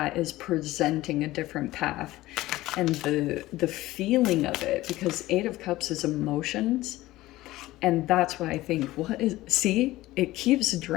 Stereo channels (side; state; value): right; quieter; 17.3 dB